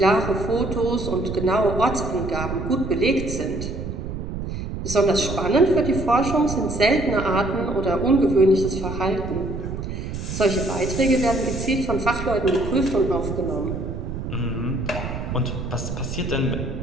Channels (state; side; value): noise; right; rumble, 6 dB below the sound